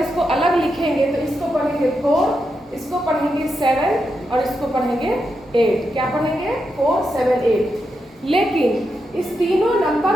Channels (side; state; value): both; normal; correlation 0.85